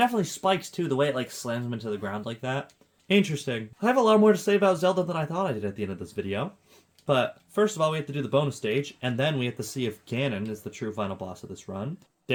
spikes, too, the way it, like, slams him into the ground like that. Interesting. I have a lot more to say about Zelda than I thought I did at the end of this video. But, first of all, we have to do the bonus stage, and then we have to see if Ganon is the true final boss of this run.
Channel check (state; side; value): identical; both; correlation 1.00